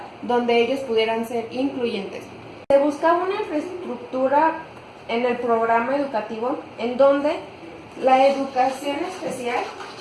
donde ellos pudieran ser incluyentes. Se buscaba una infraestructura en el programa educativo en donde la educación especial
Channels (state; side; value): identical; both; correlation 1.00